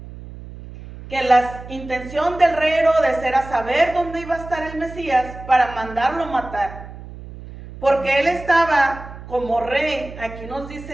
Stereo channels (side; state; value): right; noise; hum, 14 dB below the sound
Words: que la intención del rey Herodes era saber dónde iba a estar el Mesías para mandarlo matar. Porque él estaba como rey, aquí nos